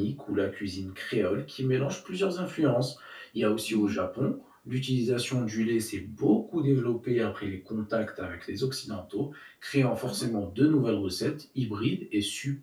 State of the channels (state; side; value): identical; both; correlation 1.00